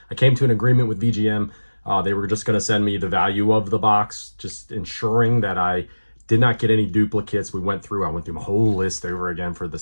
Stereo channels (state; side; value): inverted; both; correlation -1.00